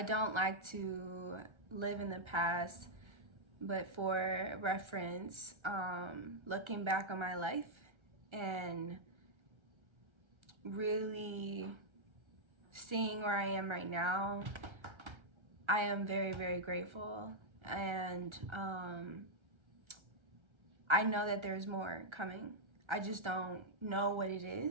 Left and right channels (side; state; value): left; late; 1.3 ms